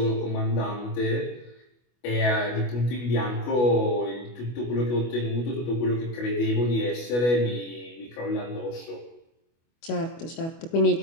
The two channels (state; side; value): late; right; 25 ms